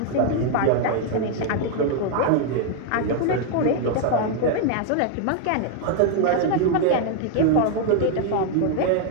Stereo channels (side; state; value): both; different; correlation 0.00